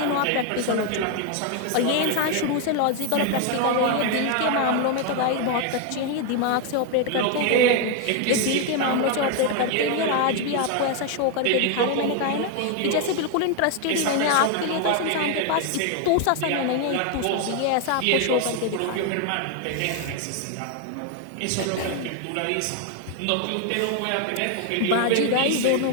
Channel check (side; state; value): both; different; correlation 0.01